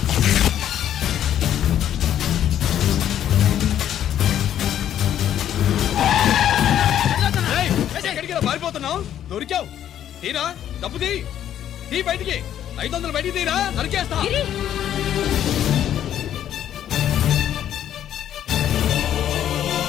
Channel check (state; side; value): quieter; right; 10.7 dB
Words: ఎక్కడికి ఇలా పారిపోతున్నావు? దొరికావు. తీరా డబ్బు తీ బయటికి. 500 బయటికి తీరా, నరికేస్తా.